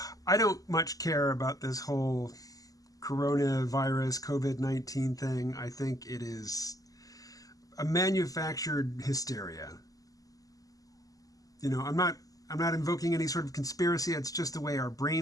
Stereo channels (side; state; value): right; late; 0.17 ms